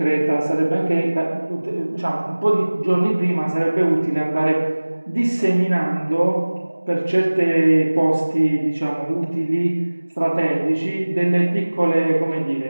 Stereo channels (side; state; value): both; inverted; correlation -1.00